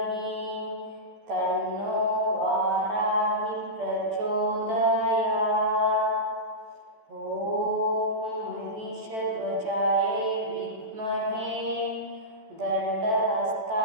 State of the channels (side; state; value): left; late; 14 ms